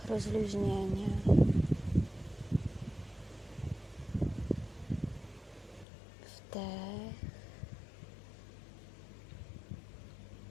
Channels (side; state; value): right; drops out; at 5.9 s